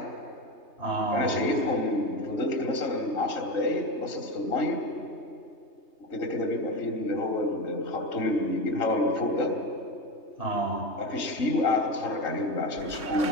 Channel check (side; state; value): right; late; 3.2 ms